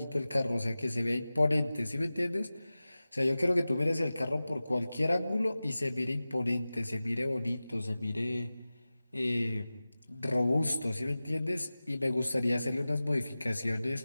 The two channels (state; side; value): inverted; both; correlation -0.96